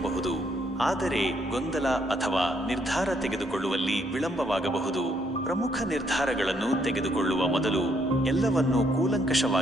ಆದರೆ ಗೊಂದಲ ಅಥವಾ ನಿರ್ಧಾರ ತೆಗೆದುಕೊಳ್ಳುವಲ್ಲಿ ವಿಳಂಬವಾಗಬಹುದು. ಪ್ರಮುಖ ನಿರ್ಧಾರಗಳನ್ನು ತೆಗೆದುಕೊಳ್ಳುವ ಮೊದಲು ಎಲ್ಲವನ್ನೂ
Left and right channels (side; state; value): both; normal; correlation 0.72